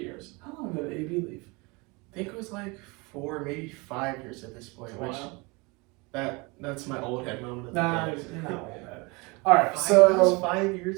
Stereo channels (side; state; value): left; quieter; 27.0 dB